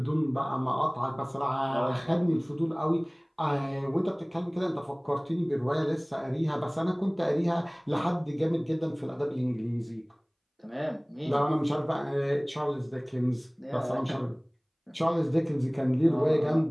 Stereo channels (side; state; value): both; identical; correlation 1.00